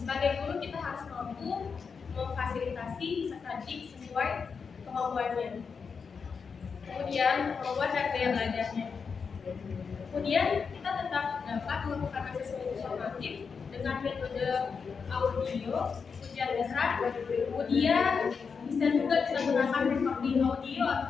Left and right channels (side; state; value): right; quieter; 5.6 dB